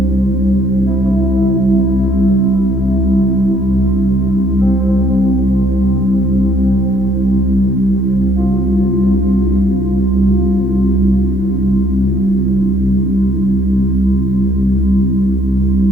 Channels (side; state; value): right; noise; rumble, 25 dB below the sound